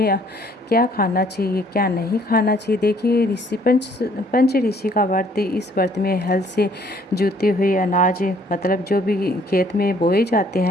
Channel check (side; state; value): both; normal; correlation 0.61